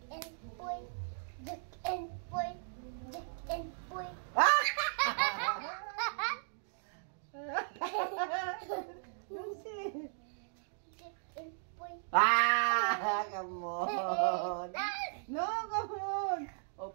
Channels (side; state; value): left; silent; digital silence